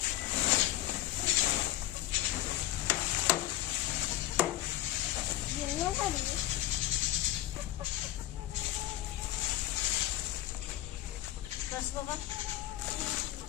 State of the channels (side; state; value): right; quieter; 14.9 dB